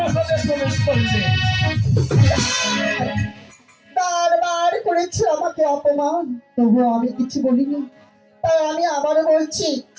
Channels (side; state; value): both; identical; correlation 1.00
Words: প্রবেশ করবে? বারবার করেছে আমাকে অপমান, তবুও আমি কিছু বলিনি। তাই আমি আবারও বলছি,